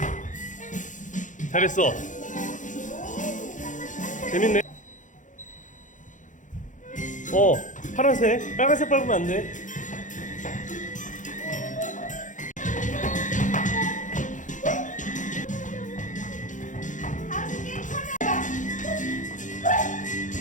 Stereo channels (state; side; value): late; right; 0.37 ms